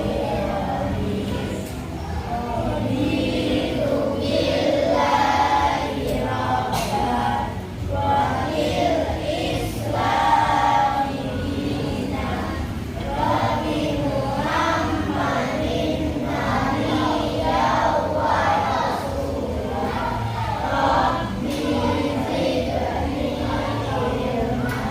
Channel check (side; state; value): both; identical; correlation 1.00